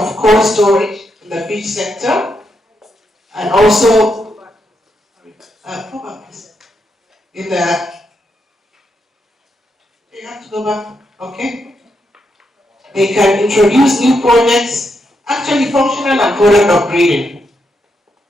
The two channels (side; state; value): both; normal; correlation 0.81